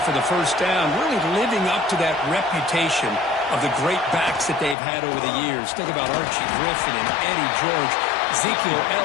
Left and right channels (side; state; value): right; drops out; at 4.8 s